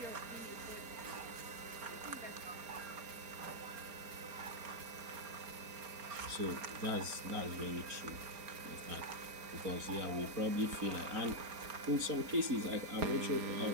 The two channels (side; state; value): left; late; 4.3 ms